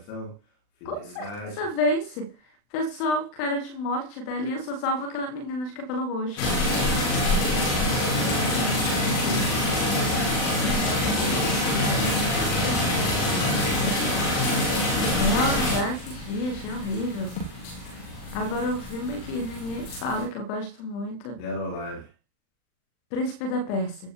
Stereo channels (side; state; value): right; late; 39 ms